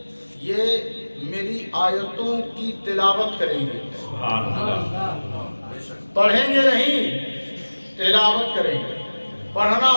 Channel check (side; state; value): both; inverted; correlation -1.00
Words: میری آیتوں کی تلاوت کریں گے. پڑھیں گے نہیں، تلاوت کریں گے. پڑھنا